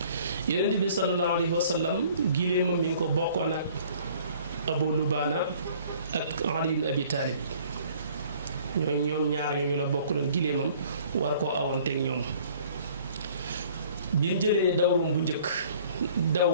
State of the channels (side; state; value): both; inverted; correlation -0.54